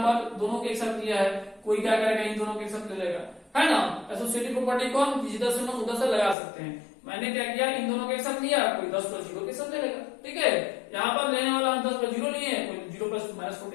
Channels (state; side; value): drops out; right; at 6.4 s